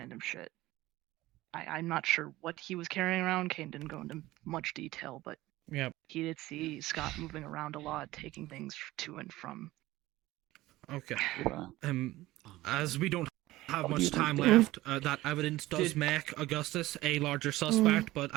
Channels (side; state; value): left; quieter; 17.4 dB